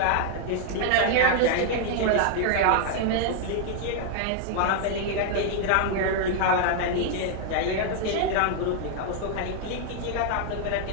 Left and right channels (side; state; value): both; different; correlation 0.00